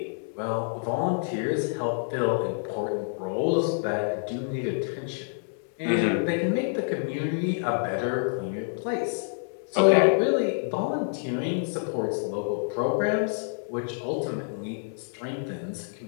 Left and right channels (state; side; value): silent; right; digital silence